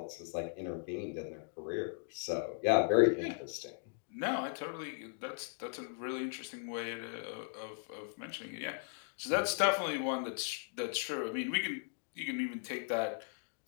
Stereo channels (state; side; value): silent; right; 53 dB below the other